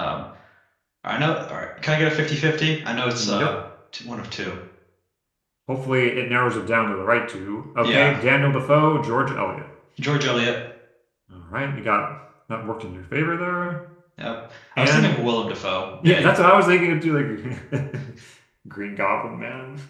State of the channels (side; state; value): both; identical; correlation 1.00